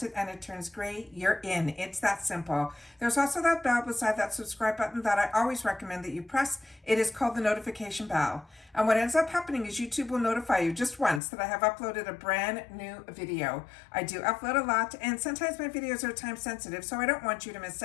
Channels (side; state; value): right; drops out; at 11.2 s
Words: it and it turns gray, you're in. It's that simple. There's also that bell beside that subscribe button that I always recommend that you press. It is called the notification bell. And what ends up happening is YouTube will notify you just once that I have uploaded a brand new video. I do upload a lot, and sometimes my videos are time sensitive, so I don't want you to miss